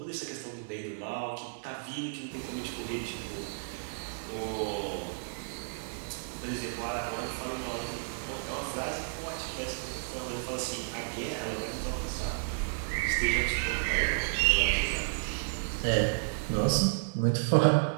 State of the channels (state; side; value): silent; left; digital silence